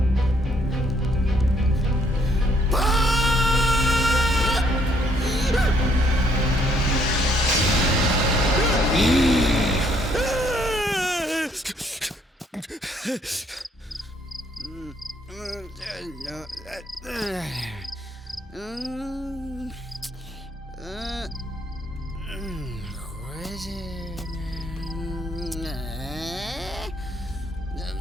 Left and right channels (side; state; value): both; normal; correlation 0.68